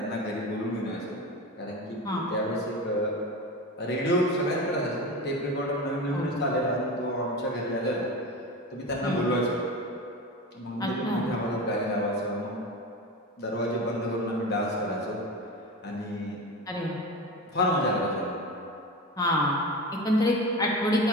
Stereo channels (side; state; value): both; normal; correlation 0.26